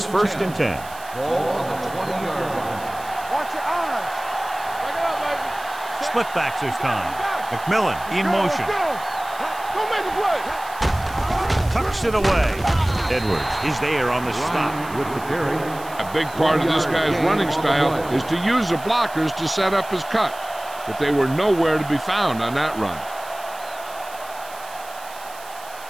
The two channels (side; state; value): right; noise; hiss, 18 dB below the sound